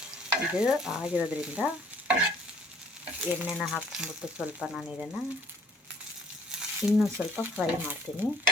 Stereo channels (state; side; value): normal; both; correlation 0.59